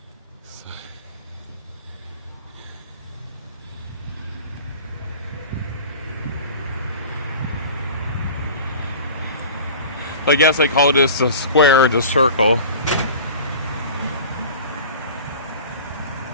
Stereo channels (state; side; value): inverted; both; correlation -0.39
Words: So. I guess I call this a square, just circle.